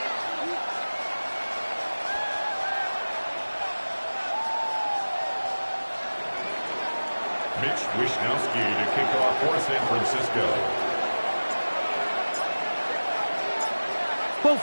Mitch Wishnowsky to kick off for San Francisco. Both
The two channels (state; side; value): inverted; both; correlation -1.00